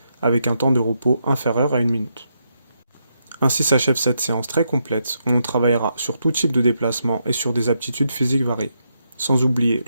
avec un temps de repos inférieur à 1 minute. Ainsi s'achève cette séance très complète où on travaillera sur tout type de déplacement et sur des aptitudes physiques variées. Sans oublier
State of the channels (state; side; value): inverted; both; correlation -0.81